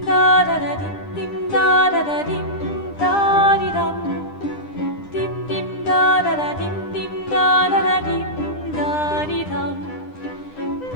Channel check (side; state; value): right; late; 9.9 ms